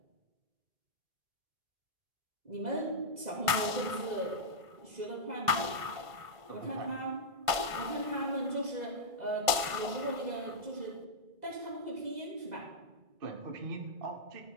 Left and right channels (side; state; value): left; late; 1.5 ms